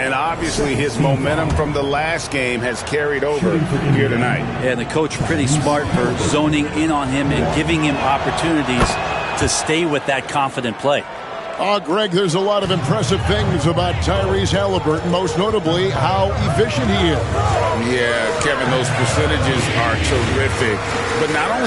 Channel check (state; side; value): identical; both; correlation 1.00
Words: obviously his momentum from the last game has carried over here tonight. Yeah, and the coach pretty smart for zoning in on him and giving him opportunities to stay with that confident play. Greg, there's a lot of impressive things about Tyrese Halliburton, most notably how efficient he is. Yeah, Kevin, those percentages are terrific. But not